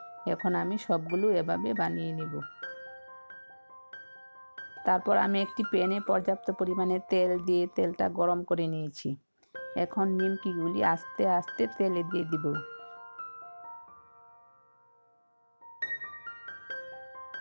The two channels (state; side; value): inverted; both; correlation -1.00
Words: এখন আমি সবগুলো এভাবে বানিয়ে নেব। তারপর আমি একটি প্যানে পর্যাপ্ত পরিমাণে তেল দিয়ে তেলটা গরম করে নিয়েছি। এখন নিমকিগুলি আস্তে আস্তে তেলে দিয়ে দিব।